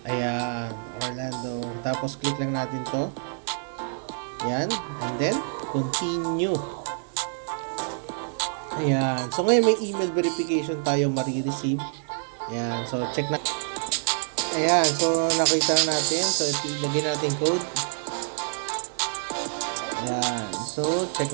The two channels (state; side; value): silent; left; digital silence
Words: Ayan, Orlando, tapos click lang natin to. Ayan, and then continue. Ayan, so ngayon may email verification tayo marireceive. Ayan, so check na. Ayan, so nakita na natin. So ilagay natin code. Ayan, so check